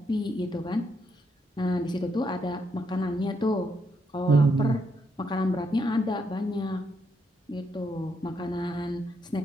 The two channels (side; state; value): both; normal; correlation 0.77